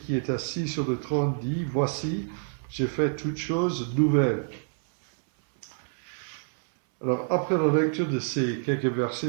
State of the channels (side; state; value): left; silent; 60 dB below the other